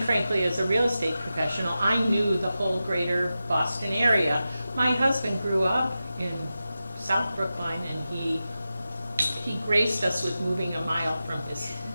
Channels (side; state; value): both; inverted; correlation -0.93